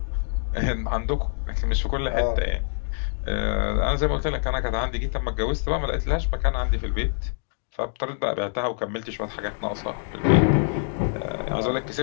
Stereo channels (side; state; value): right; silent; digital silence